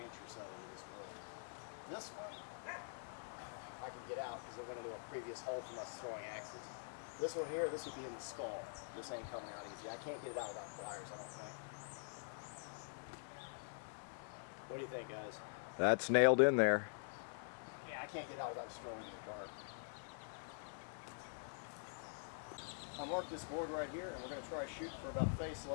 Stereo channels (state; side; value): silent; right; digital silence